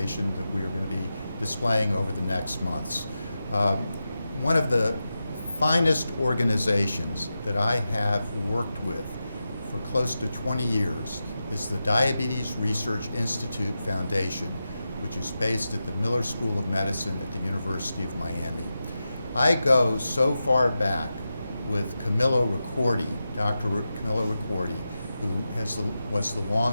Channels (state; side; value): inverted; both; correlation -0.91